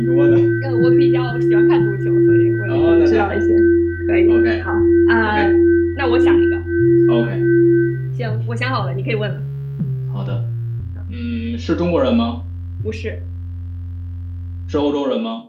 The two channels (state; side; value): identical; both; correlation 1.00